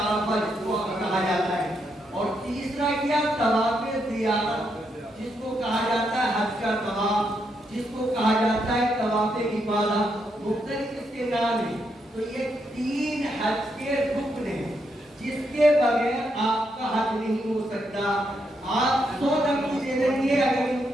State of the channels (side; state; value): both; normal; correlation 0.79